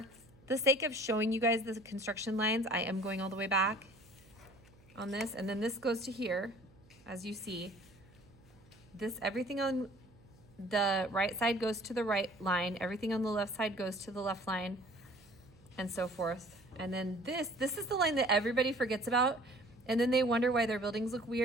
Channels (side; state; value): right; noise; hum, 27 dB below the sound